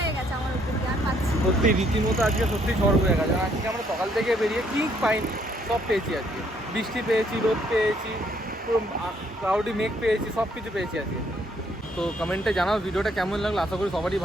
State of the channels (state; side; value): normal; both; correlation 0.68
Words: গেছে আমার উপর দিয়ে, আর পাচ্ছি সত্যি রীতিমতো আজকে সত্যি ঝড় বয়ে গেছে। আজকে আমরা সকাল থেকে বেরিয়ে কি পাইনি, সব পেয়েছি আজকে। বৃষ্টি পেয়েছি, রোদ পেয়েছি, পুরো ক্লাউডি মেঘ পেয়েছি, সব কিছু পেয়েছি আজকে। তো কমেন্টে জানাও ভিডিওটা কেমন লাগলো, আশা করি সবারই